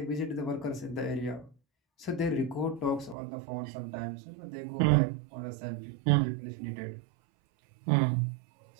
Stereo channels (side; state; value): left; drops out; at 3.2 s